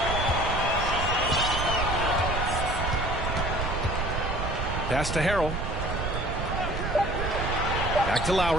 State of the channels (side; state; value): right; noise; rumble, 3 dB below the sound